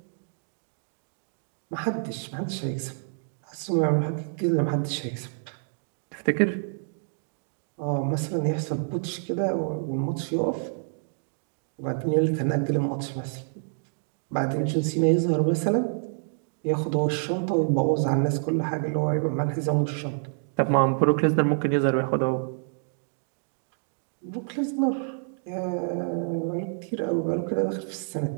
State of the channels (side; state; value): left; silent; digital silence